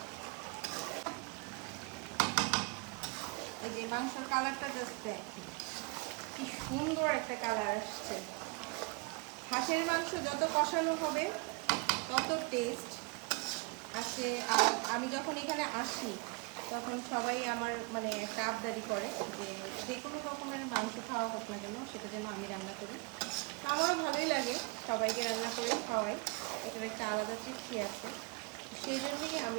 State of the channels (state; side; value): quieter; left; 30.2 dB